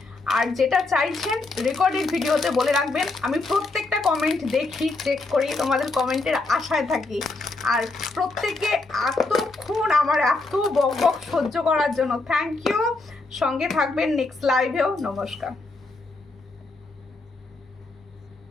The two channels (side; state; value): right; quieter; 3.3 dB